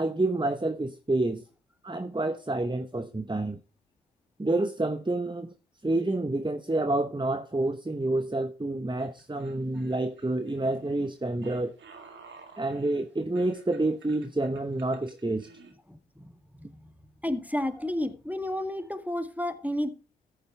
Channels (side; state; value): both; normal; correlation 0.81